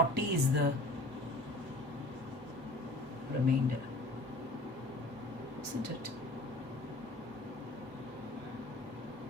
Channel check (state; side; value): normal; both; correlation 0.44